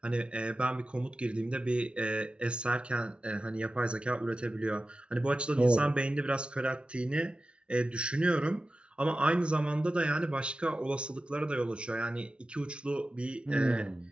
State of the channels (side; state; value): left; late; 0.058 ms